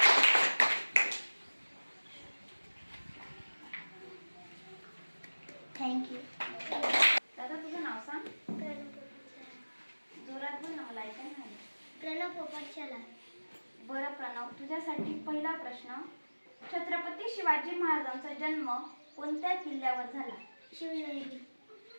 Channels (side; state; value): both; inverted; correlation -1.00